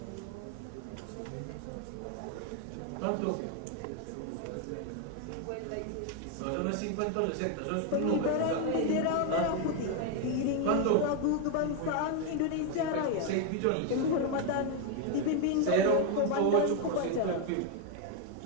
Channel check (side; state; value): both; different; correlation 0.01